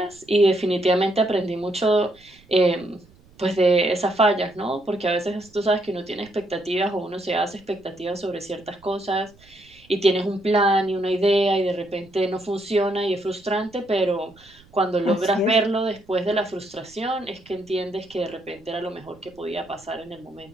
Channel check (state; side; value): noise; right; rumble, 28 dB below the sound